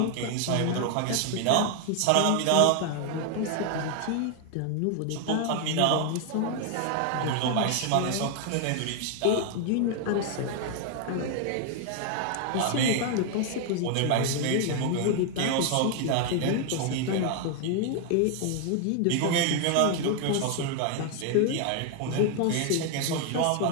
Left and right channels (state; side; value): different; both; correlation 0.00